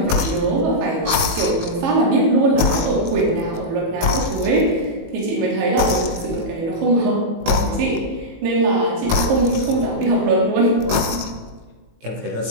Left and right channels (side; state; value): left; late; 18 ms